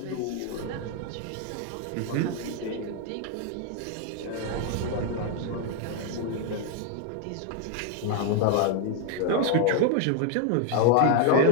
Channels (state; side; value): different; both; correlation 0.00